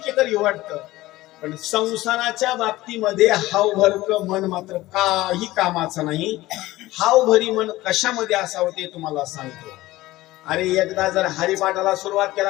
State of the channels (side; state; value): right; quieter; 17.6 dB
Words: एकर घेऊ वाटतं. पण संसाराच्या बाबतीमध्ये हावभरक मन मात्र काही कामाचं नाही. हावभरी मन कशामध्ये असावं ते तुम्हाला सांगतो. अरे एकदा जर हरिपाठाला सुरुवात